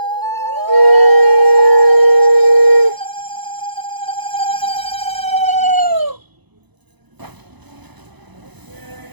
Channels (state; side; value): late; left; 1.0 ms